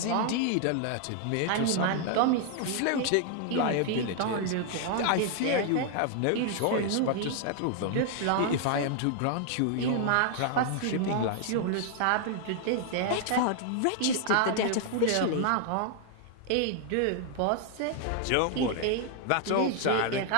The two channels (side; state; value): both; different; correlation 0.00